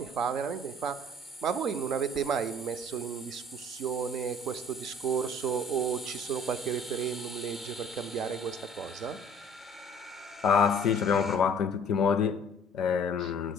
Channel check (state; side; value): normal; both; correlation 0.52